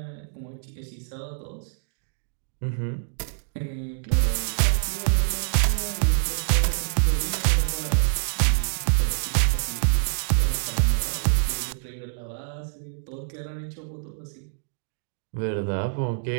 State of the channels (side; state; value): left; silent; digital silence